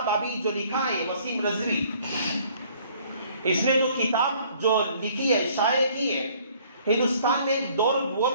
ابھی جو لکھا ہے وسیم رضوی، اس نے جو کتاب جو لکھی ہے، شائع کی ہے، ہندوستان میں ایک دور وہ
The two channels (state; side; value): inverted; both; correlation -0.58